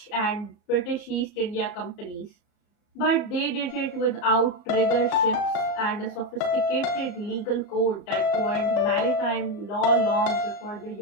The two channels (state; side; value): late; right; 34 ms